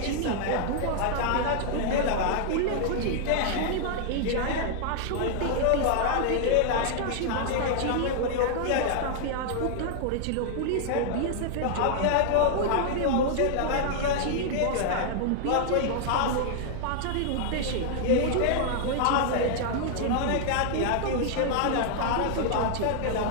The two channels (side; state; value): both; different; correlation -0.01